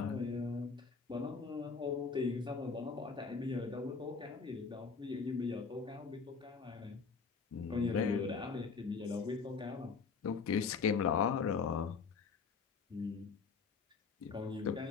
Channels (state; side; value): quieter; right; 5.2 dB